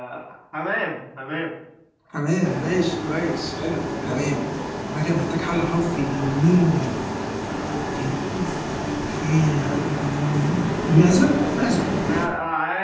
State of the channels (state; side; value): identical; both; correlation 1.00